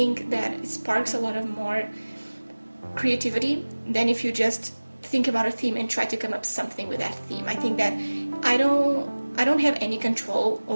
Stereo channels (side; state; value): both; inverted; correlation -1.00